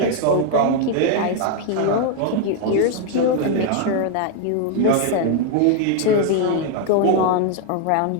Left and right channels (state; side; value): different; both; correlation 0.00